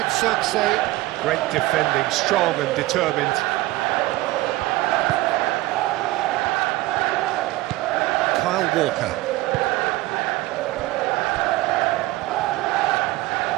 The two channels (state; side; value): quieter; left; 18.6 dB